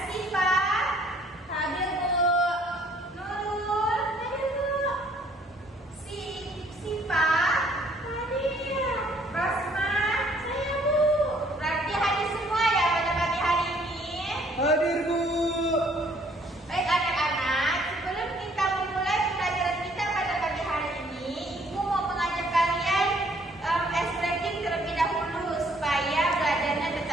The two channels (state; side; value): normal; both; correlation 0.62